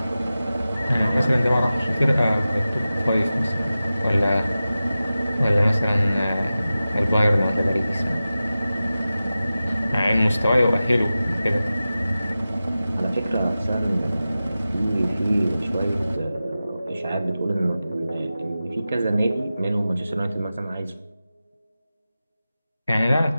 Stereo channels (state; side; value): inverted; both; correlation -0.95